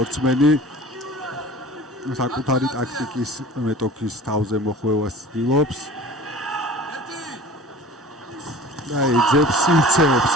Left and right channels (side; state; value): both; normal; correlation 0.42